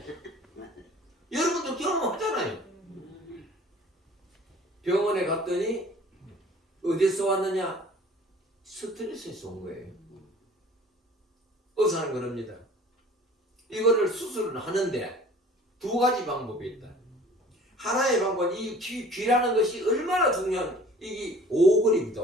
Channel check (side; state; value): both; normal; correlation 0.49